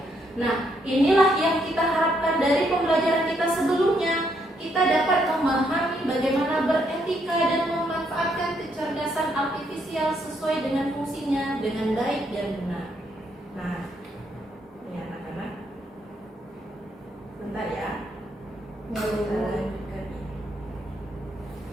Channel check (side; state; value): both; normal; correlation 0.74